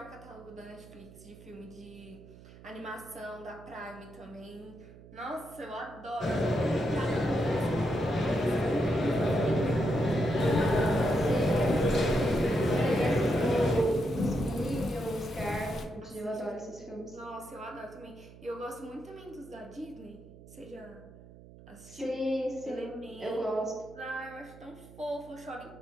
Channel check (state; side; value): noise; right; hum, 19 dB below the sound